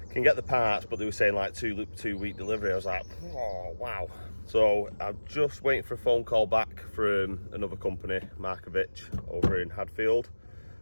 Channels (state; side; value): inverted; both; correlation -1.00